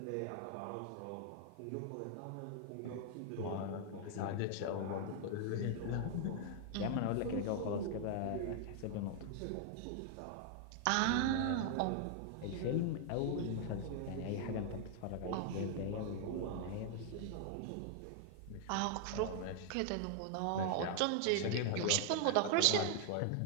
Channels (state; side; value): different; both; correlation 0.00